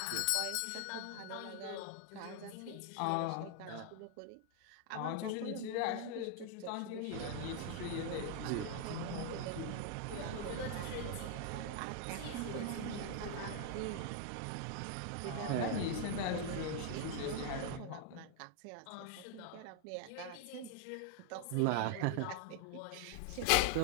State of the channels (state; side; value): different; both; correlation 0.00